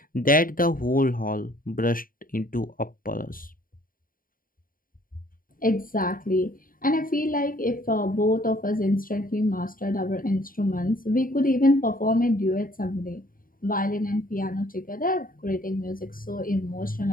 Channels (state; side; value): late; right; 0.41 ms